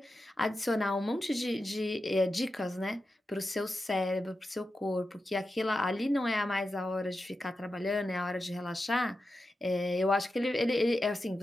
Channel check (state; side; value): normal; both; correlation 0.90